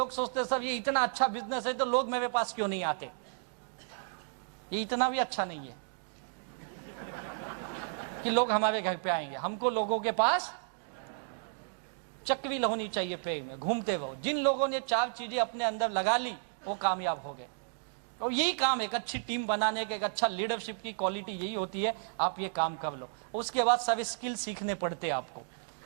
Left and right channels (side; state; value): left; silent; digital silence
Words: सोचते सब ये इतना अच्छा बिजनेस है तो लोग मेरे पास क्यों नहीं आते। ये इतना भी अच्छा नहीं है कि लोग हमारे घर पे आएंगे। हमको लोगों के पास चक्री होनी चाहिए, पेड़ में घूमते रहो। जिन लोगों ने 4 चीजें अपने अंदर लगा ली वो कामयाब हो गए। और यही काम एक अच्छी टीम बनाने का, एक अच्छा लीडरशिप की क्वालिटी यही होती है। आप ये काम कर लो, उसके बाद सब स्किल सीखने पड़ते हैं आपको।